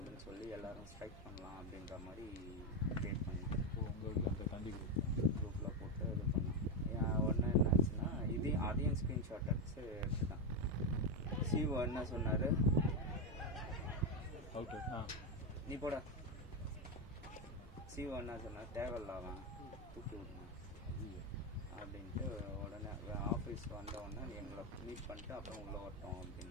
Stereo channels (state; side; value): normal; both; correlation 0.09